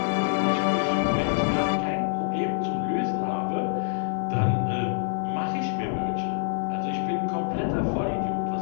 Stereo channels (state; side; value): silent; right; 61 dB below the other